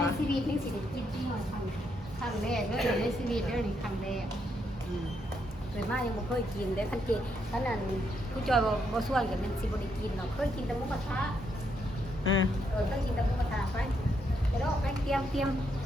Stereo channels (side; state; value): both; normal; correlation 0.77